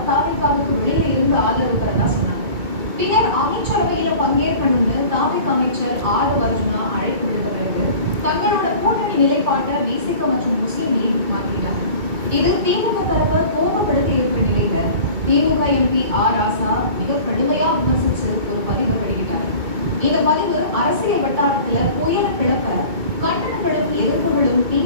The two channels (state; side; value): late; left; 2.2 ms